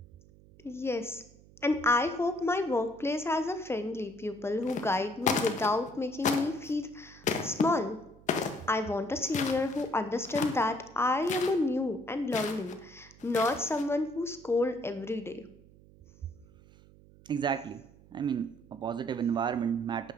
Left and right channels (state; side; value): noise; right; hum, 24 dB below the sound